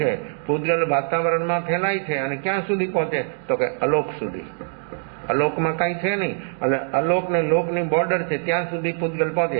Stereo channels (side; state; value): left; silent; digital silence